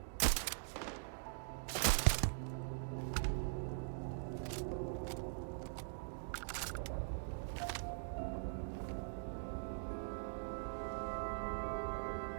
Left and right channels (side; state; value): left; silent; digital silence